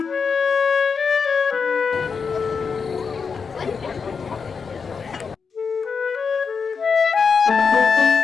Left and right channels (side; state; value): right; quieter; 5.6 dB